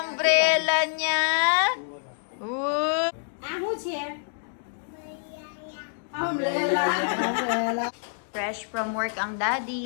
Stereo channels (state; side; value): silent; right; digital silence